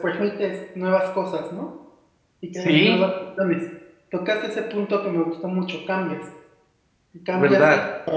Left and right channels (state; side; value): identical; both; correlation 1.00